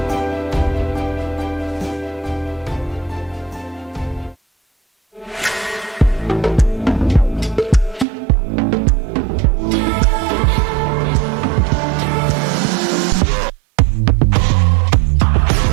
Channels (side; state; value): left; drops out; at 8.1 s